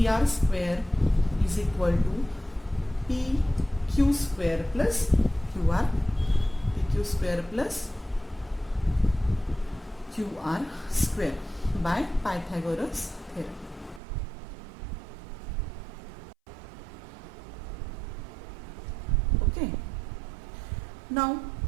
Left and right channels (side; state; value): left; drops out; at 14.0 s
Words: square is equal to PQ square plus QR, PQ square plus QR square by Pythagoras theorem. Okay. Now